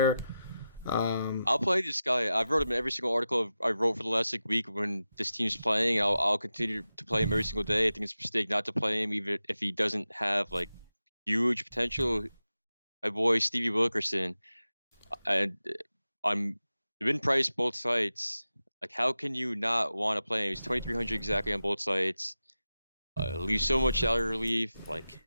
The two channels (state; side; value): inverted; both; correlation -0.92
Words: I'll play this guy. I've wrote him in every single article I wrote for the last week when this team's playing. I'll continue to play him every single day. I think it's a mistake not to play him, even if he doesn't have huge potential. My boy Stevie Wilkerson, and I'm been priced both sites. How can you not want to play him? He's 2,300 exactly on both sites. Leaves so much salary relief.